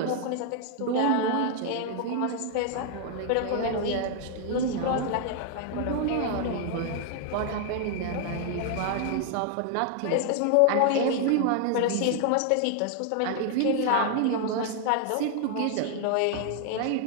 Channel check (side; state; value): both; different; correlation 0.00